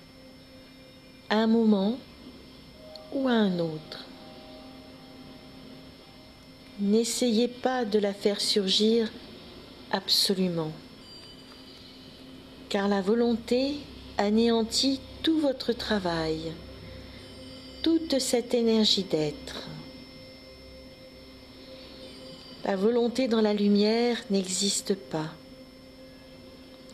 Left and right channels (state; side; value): identical; both; correlation 1.00